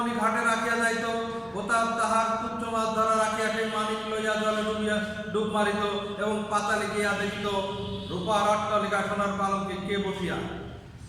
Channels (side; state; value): both; identical; correlation 1.00